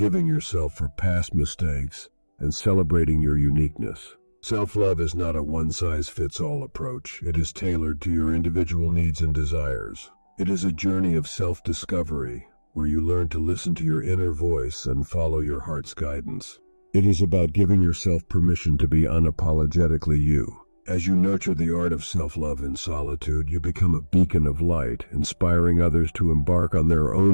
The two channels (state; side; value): inverted; both; correlation -1.00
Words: yourself for past mistakes, and celebrating your uniqueness. Self-love is not a one-size-fits-all approach. It is tailored to your individual needs and desires. It is a journey of self-discovery, where you learn to listen to your inner voice and follow your heart's guidance. It is about giving yourself permission to be unapologetically you. As you nurture the art of self-love in solitude, you become a beacon of light, inspiring others to embark on their